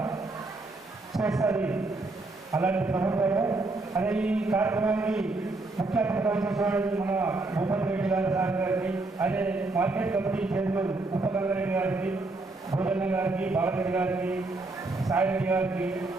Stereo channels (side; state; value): left; quieter; 3.2 dB